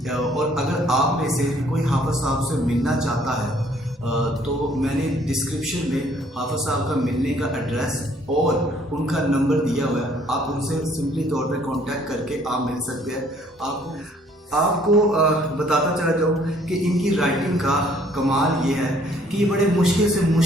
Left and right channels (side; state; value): both; normal; correlation 0.61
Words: और अगर आप में से कोई हाफिज़ साहब से मिलना चाहता है तो मैंने डिस्क्रिप्शन में हाफिज़ साहब का मिलने का एड्रेस और उनका नंबर दिया हुआ है। आप उनसे सिंपली तौर पे कांटेक्ट करके आप मिल सकते हैं। आपको बताता चला जाऊँ कि इनकी राइटिंग का कमाल ये है कि ये बड़े मुश्किल से